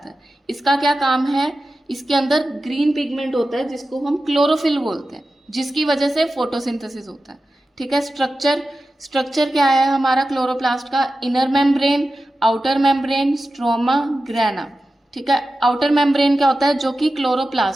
है। इसका क्या काम है, इसके अंदर ग्रीन पिगमेंट होता है जिसको हम क्लोरोफिल बोलते हैं, जिसकी वजह से फोटोसिंथेसिस होता है, ठीक है। स्ट्रक्चर क्या है हमारा क्लोरोप्लास्ट का, inner membrane, outer membrane, stroma, grana, ठीक है। आउटर मेम्ब्रेन क्या होता है, जो कि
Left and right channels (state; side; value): normal; both; correlation 0.93